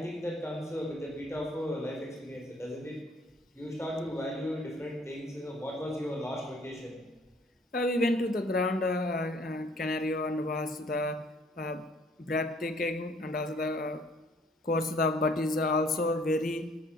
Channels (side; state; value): both; normal; correlation 0.60